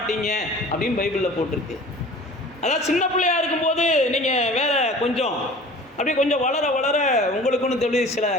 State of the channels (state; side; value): normal; both; correlation 0.43